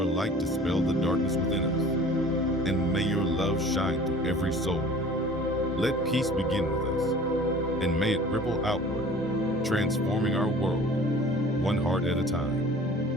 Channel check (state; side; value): normal; both; correlation 0.46